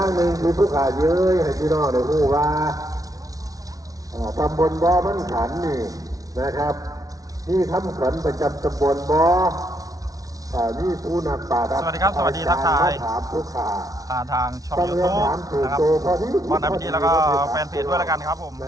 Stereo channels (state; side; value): late; left; 0.18 ms